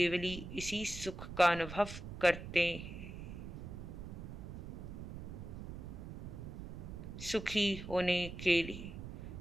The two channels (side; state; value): right; noise; rumble, 9 dB below the sound